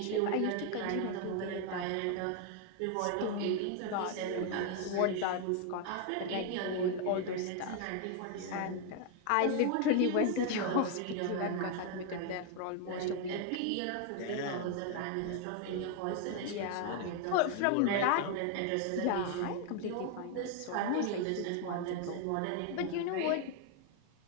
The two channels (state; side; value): different; both; correlation 0.00